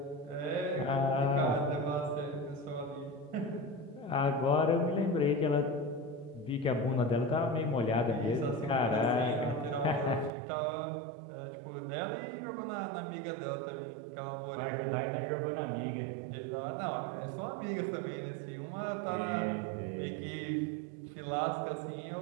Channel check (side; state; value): left; drops out; at 10.3 s